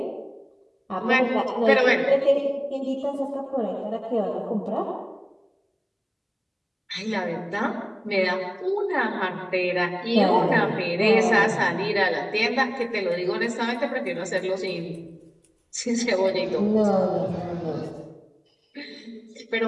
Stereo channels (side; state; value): both; identical; correlation 1.00